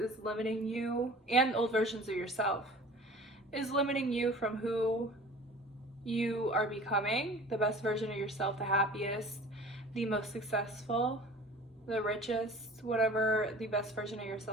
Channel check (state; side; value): normal; both; correlation 0.43